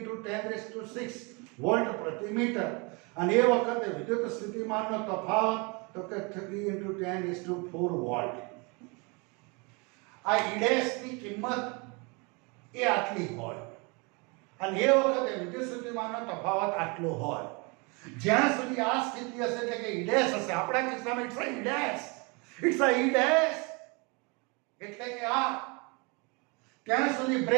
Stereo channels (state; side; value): quieter; left; 30.2 dB